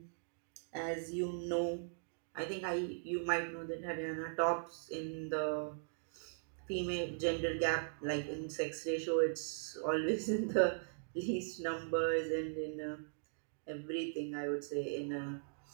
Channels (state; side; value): silent; left; digital silence